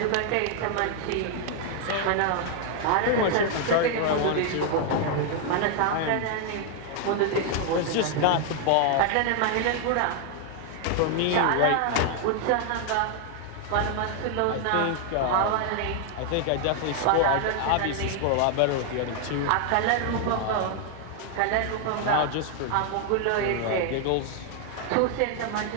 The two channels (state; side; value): different; both; correlation 0.00